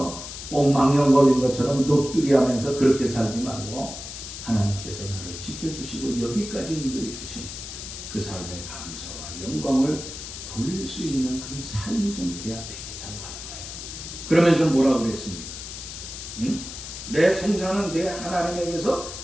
옥망령 걸린 것처럼 넋두리하면서 그렇게 살지 말고, 하나님께서 나를 지켜주시고 여기까지 인도해 주신 그 삶의 감사와 영광을 돌릴 수 있는 그런 삶이 좀 돼야 되겠다고 하는 거예요. 그러면서 뭐라고 그랬습니까? 응? 내 송사는 내 하나님에게서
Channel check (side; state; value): left; noise; hiss, 10 dB below the sound